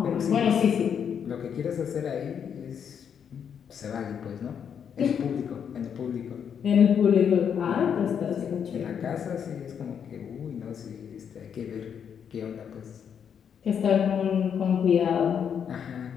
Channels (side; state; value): right; quieter; 7.8 dB